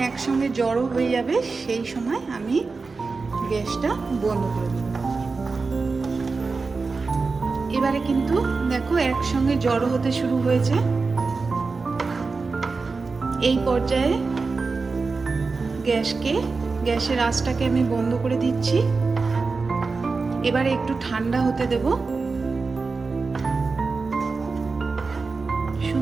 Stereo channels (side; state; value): left; quieter; 4.2 dB